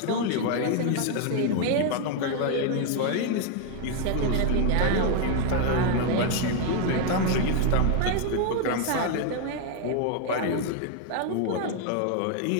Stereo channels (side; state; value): both; different; correlation 0.01